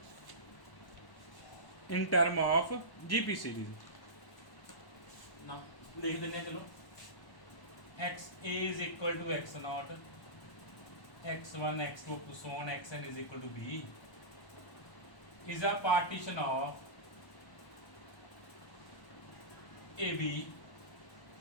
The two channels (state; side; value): late; right; 1.1 ms